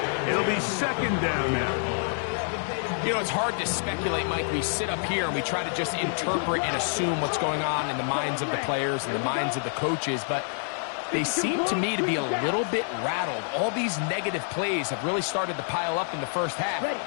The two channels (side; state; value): right; silent; 60 dB below the other